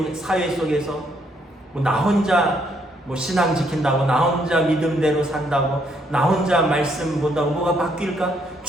사회 속에서 나 혼자 신앙 지킨다고, 나 혼자 믿음대로 산다고, 나 혼자 말씀 본다고 뭐가 바뀔까?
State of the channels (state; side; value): normal; both; correlation 0.72